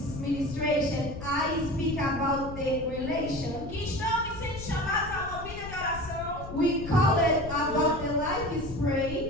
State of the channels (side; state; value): left; noise; rumble, 11 dB below the sound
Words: ministration, I speak about the relation. Que estamos sendo chamados a uma vida de oração We call it about the life is